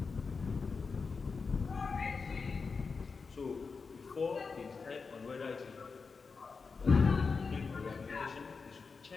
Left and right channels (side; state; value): right; quieter; 4.8 dB